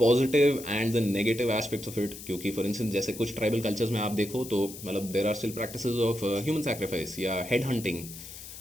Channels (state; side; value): noise; left; hiss, 13 dB below the sound